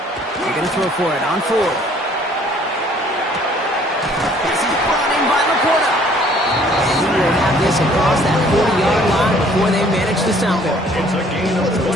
They're going to throw for it on 4th. This is brought in by Laporta. And he will have this across that 40-yard line before they manage to stop him. It's a gain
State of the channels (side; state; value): both; normal; correlation 0.58